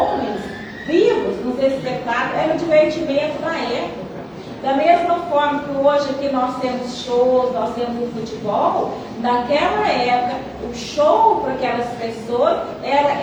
vivos nos espetáculos, era o divertimento da época. Da mesma forma que hoje aqui nós temos shows, nós temos o futebol, naquela época o show para aquelas pessoas era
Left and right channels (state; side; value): identical; both; correlation 1.00